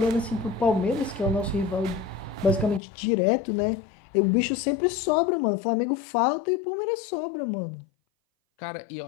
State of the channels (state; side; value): drops out; right; at 2.8 s